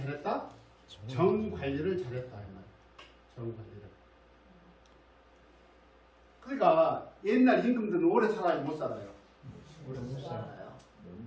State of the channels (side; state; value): both; identical; correlation 1.00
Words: 정 관리를 잘했다. 이 말. 정 관리를. 그러니까 옛날 임금들은 오래 살아야 못 살아요. 오래 못 살아요.